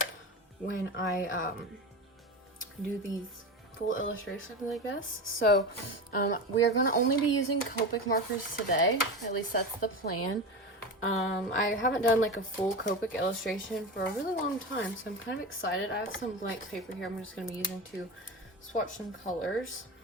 when I do these full illustrations, I guess. So we are going to only be using Copic markers today. At least that's the plan. I haven't done like a full Copic illustration for a really long time, so I'm kind of excited. I have some blank paper here I'm just going to be using to swatch some colors.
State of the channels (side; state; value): both; normal; correlation 0.23